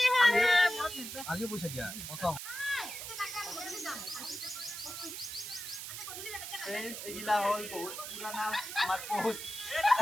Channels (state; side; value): noise; right; hiss, 8 dB below the sound